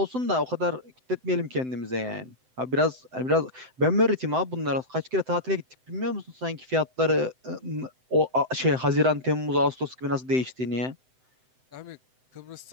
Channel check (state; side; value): late; left; 7.8 ms